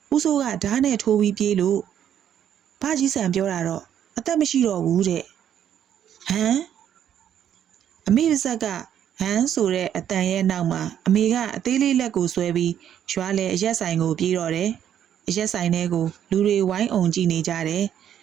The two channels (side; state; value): left; quieter; 9.8 dB